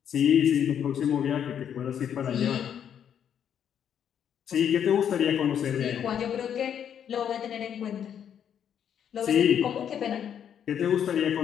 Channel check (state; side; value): quieter; right; 8.8 dB